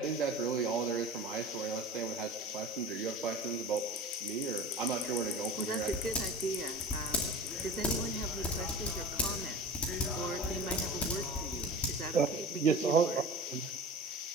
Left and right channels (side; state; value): both; normal; correlation 0.34